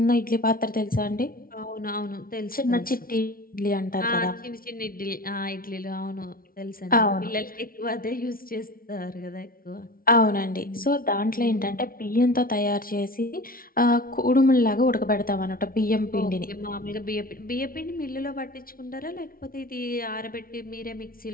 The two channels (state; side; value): late; right; 0.43 ms